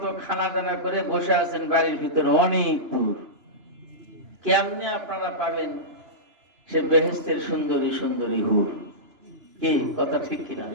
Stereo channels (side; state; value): left; late; 2.9 ms